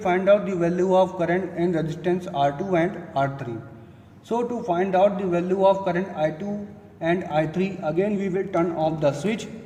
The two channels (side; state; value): both; identical; correlation 1.00